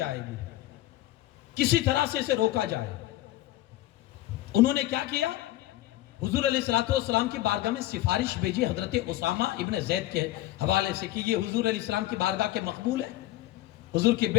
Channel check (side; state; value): right; quieter; 15.6 dB